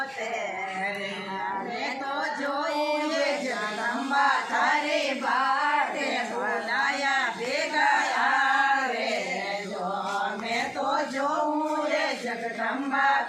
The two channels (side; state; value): both; identical; correlation 1.00